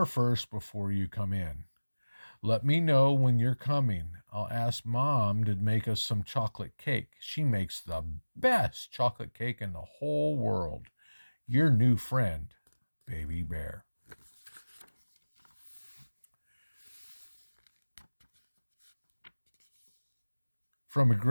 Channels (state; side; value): inverted; both; correlation -1.00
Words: first before you come in. Let me know when you're coming. I'll ask Mom to make us some chocolate cake. She makes the best chocolate cake in the whole world. Your new friend, Baby Bear. From